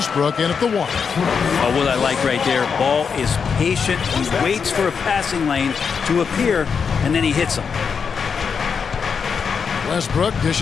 in at the 1. Oh, what I like right there, Ball is patient. He waits for a passing lane to appear, and then he hits him. Westbrook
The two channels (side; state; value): right; quieter; 6.1 dB